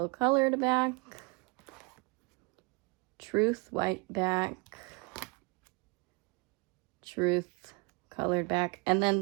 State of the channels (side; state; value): left; quieter; 30.1 dB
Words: colored back, truth white back, truth colored back. And then